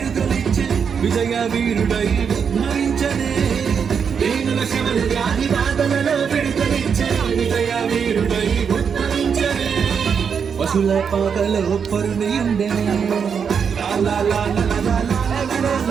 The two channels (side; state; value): left; quieter; 6.7 dB